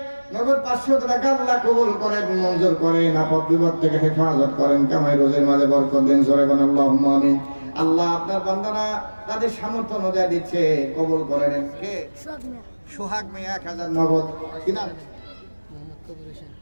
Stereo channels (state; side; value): inverted; both; correlation -1.00